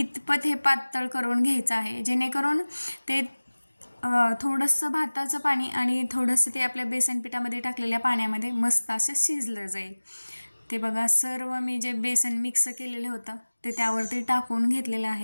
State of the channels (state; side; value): inverted; both; correlation -1.00